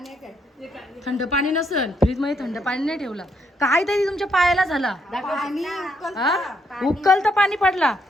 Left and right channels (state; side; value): normal; both; correlation 0.74